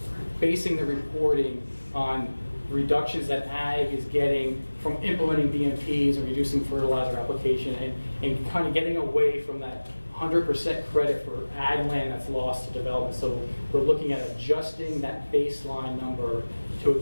basing the reporting on reductions that ag is getting from implementing BMPs and reducing fertilizer application, and kind of getting away from that 100% credit for ag land that's lost to development. So we're looking at adjusting that baseline number to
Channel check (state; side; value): inverted; both; correlation -1.00